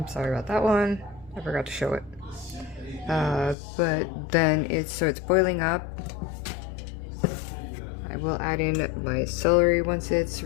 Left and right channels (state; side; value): drops out; right; at 3.6 s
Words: sorry about that one. I forgot to show it. But then it's boiling up. I will add in my celery once it's